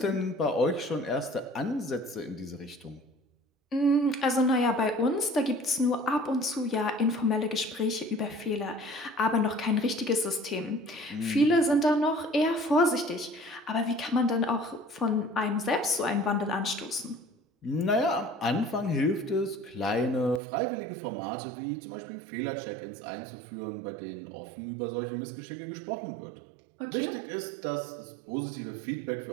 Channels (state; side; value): drops out; left; at 20.4 s